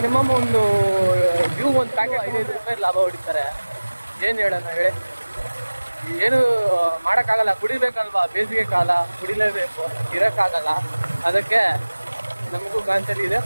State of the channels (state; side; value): inverted; both; correlation -1.00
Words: ಒಂದು ಪ್ಯಾಕೆಟ್ 5 ರೂಪಾಯಿ ಲಾಭ ಹೊಡಿತಾರೆ. ಏನು ಹೇಳೋಣ ಹೇಳಿ, ಏನು ಮಾಡೋಕ್ಕಾಗಲ್ಲ. ಕುಡಿಬೇಕಲ್ವಾ, ಬೇಸಿಗೆ ಕಾಲ, ಕುಡಿಲೇಬೇಕು, ಇರೋಕ್ಕಾಗಲ್ಲ. ಅದಕ್ಕೆ ನಮಗೂ ಗಾಂಚಲಿ ಇದೆ,